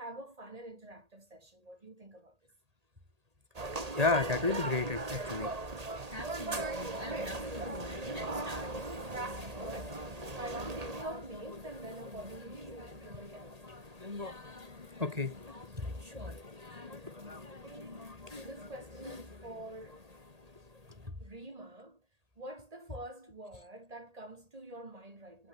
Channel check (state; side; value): late; left; 1.8 ms